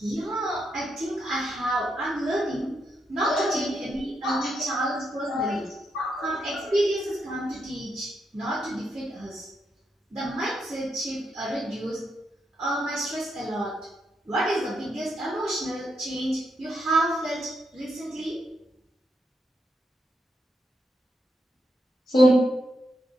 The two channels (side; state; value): both; normal; correlation 0.81